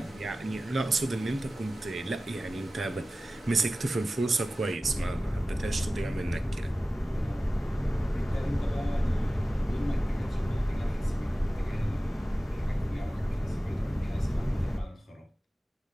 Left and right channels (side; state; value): both; normal; correlation 0.96